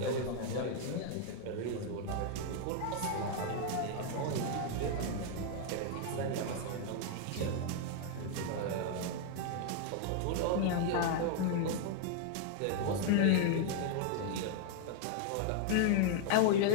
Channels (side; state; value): both; different; correlation 0.00